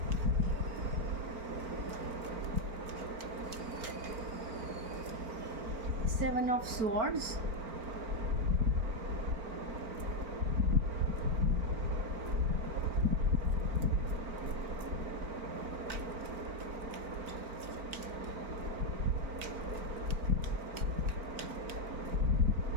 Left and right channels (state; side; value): late; left; 4.4 ms